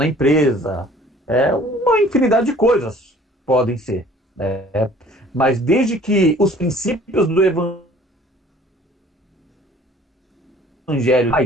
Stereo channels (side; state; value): both; normal; correlation 0.53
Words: empresa, uma infinidade de coisas podem ser, né? Mas desde que os princípios do Evangelho